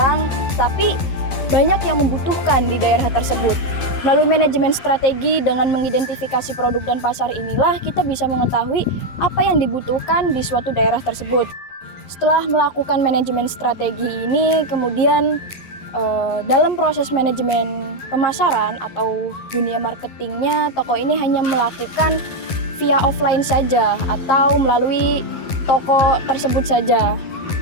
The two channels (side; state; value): right; late; 11 ms